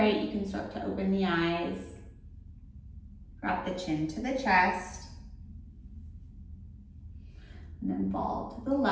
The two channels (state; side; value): identical; both; correlation 1.00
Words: You can start to open the eyes. Drop the chin to the chest. And then fall to the